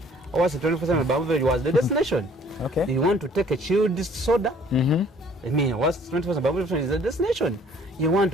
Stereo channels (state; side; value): normal; both; correlation 0.57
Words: was 24/7 beverage was the destination. Okay. You want to take a chilled soda? I mean, what's 24/7 beverage is the destination. You want